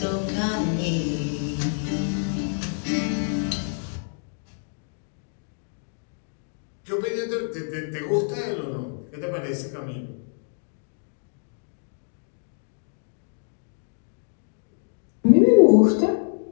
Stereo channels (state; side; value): silent; right; digital silence